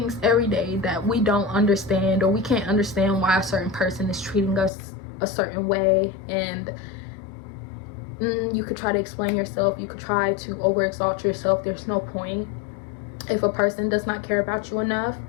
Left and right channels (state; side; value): drops out; right; at 4.7 s